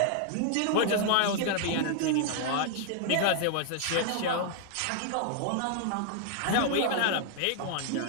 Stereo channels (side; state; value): both; different; correlation 0.00